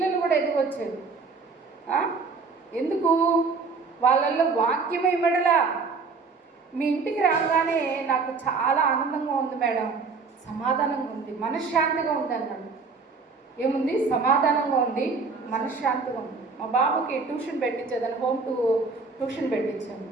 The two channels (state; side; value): quieter; left; 4.6 dB